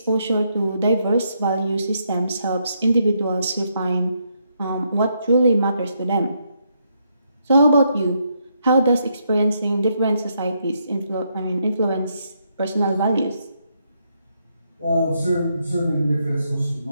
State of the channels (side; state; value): both; inverted; correlation -0.77